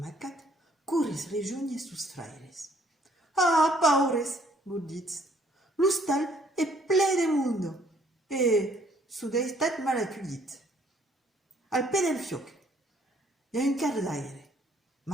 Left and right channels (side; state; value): both; normal; correlation 0.63